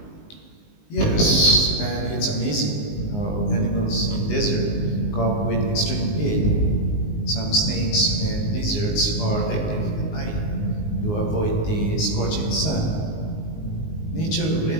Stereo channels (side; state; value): right; late; 19 ms